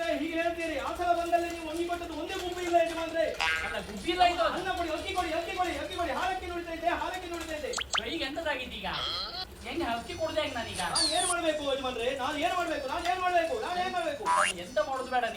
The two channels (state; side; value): identical; both; correlation 1.00